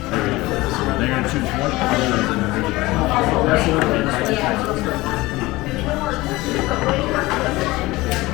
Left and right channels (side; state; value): right; quieter; 20.1 dB